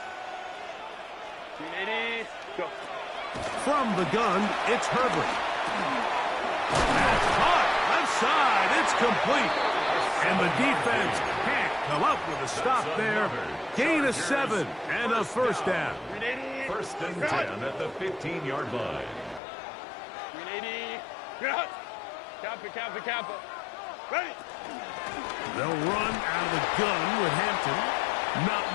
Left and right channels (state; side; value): drops out; right; at 19.4 s